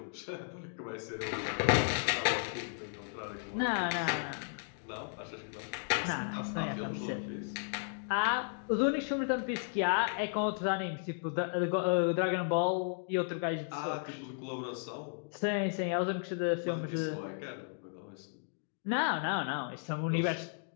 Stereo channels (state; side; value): silent; right; digital silence